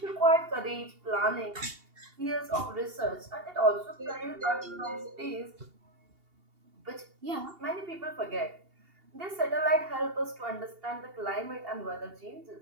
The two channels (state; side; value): late; left; 2.8 ms